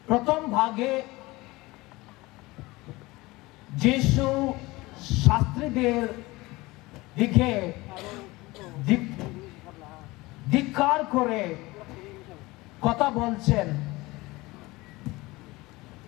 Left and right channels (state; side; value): quieter; right; 21.3 dB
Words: প্রথম ভাগে যিশু শাস্ত্রীদের দিকে ধিক্কার করে কথা বলছেন।